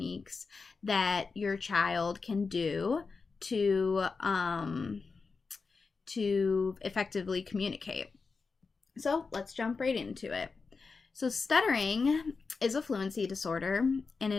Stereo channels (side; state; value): right; quieter; 4.6 dB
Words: that your child can do to effectively communicate. So let's jump right into it. So, stuttering is a fluency disorder, and